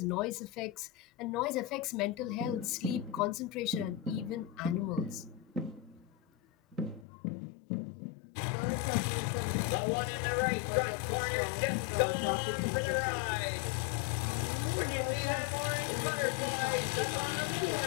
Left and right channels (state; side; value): drops out; right; at 7.1 s